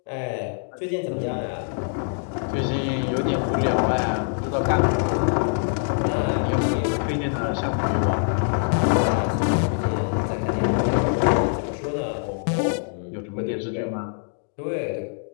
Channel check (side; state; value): right; silent; digital silence